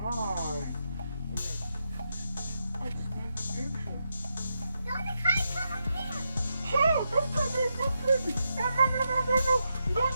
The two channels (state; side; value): inverted; both; correlation -0.85